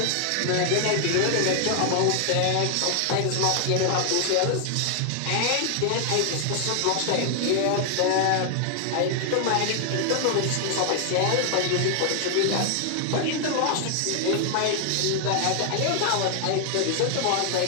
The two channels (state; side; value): different; both; correlation 0.00